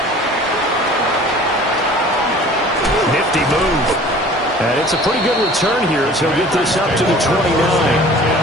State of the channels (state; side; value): normal; both; correlation 0.46